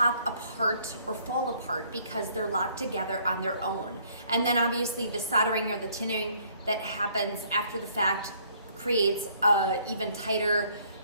apart or fall apart because they're locked together on their own. And then obviously the soldering or the tinning that happens after the fact creates a even tighter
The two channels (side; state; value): both; inverted; correlation -0.63